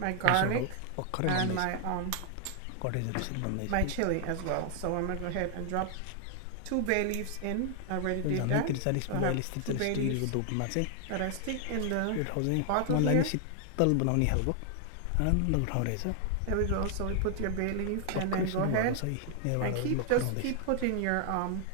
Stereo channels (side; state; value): both; different; correlation 0.00